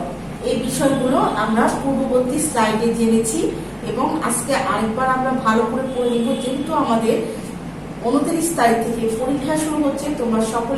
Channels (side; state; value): both; identical; correlation 1.00